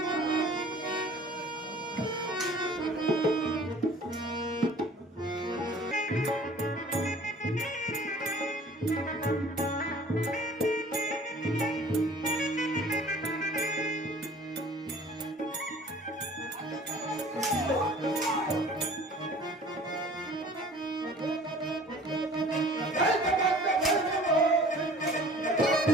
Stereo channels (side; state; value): both; normal; correlation 0.48